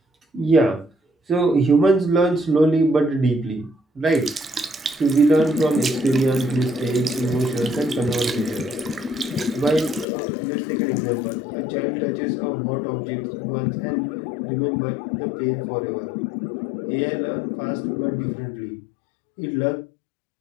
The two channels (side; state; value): right; drops out; at 10.1 s